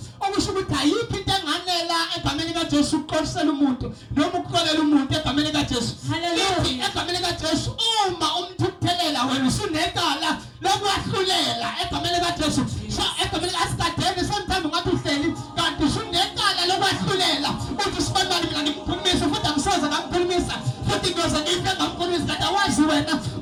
okusho ukuthi ayikho into enganela egameni kaJesu ukuqolisela umuntu noma ukuxolela umuntu egameni kaJesu lithi egameni kaJesu uma umthukuthelela wena usunecala lokwahlulela egameni kaJesu so egameni asikadeni sometimes ngathi uhleli kanti usunecala lokwahlulela uthi sibanibani mina ngimkhulumisa futhi angisoze ngamkhulumisa futhi ngoze ngife ngamkhulumisa kanti awazi wena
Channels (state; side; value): identical; both; correlation 1.00